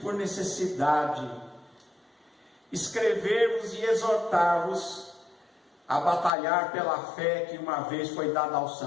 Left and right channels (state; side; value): drops out; right; at 6.3 s